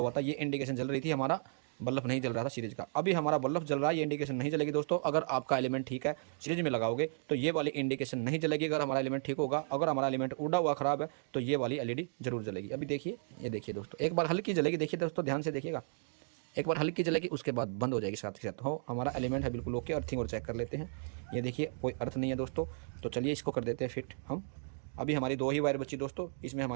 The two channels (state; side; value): silent; left; digital silence